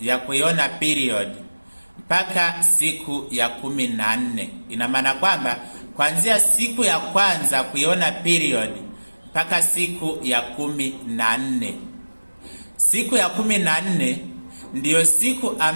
ya kuiona period mpaka siku ya 14. Ina maana kwamba kuanzia siku ya kwanza kuiona period mpaka siku ya 14. Siku ya 14 ndiyo siku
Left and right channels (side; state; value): both; inverted; correlation -1.00